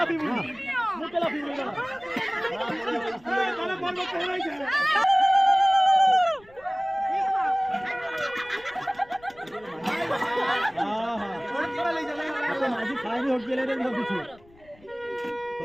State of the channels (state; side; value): noise; left; rumble, 27 dB below the sound